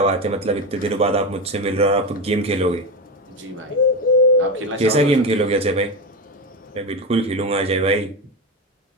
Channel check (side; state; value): both; normal; correlation 0.17